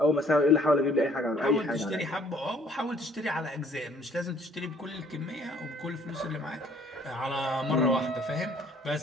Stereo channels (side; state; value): both; normal; correlation 0.59